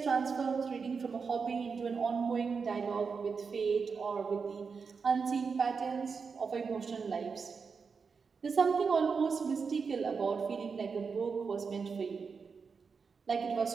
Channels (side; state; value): left; quieter; 5.4 dB